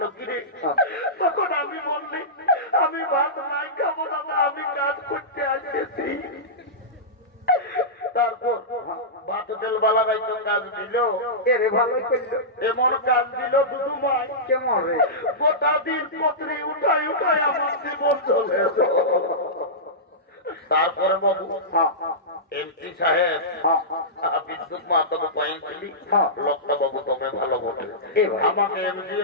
না কিরে? তখন আমি বললি আমি ভাত নাই খাবো না, আমি কাজ করতে আসেছি। তারপর ভাতুরের বলারাই তো কাজ দিল, এরে ভালোই করলো। এমন কাজ দিল দুদু মাই কেমন রে? গোটা দিন পত্রী উঠাই উঠাই আমার জীবন চলে। তারপরে বাবু এমপি সাহেব বিদ্যুৎ মাতাকে পাইছিলি, লোকটা বাবু তুমি ভালো বটে, আমাকে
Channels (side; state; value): both; normal; correlation -0.16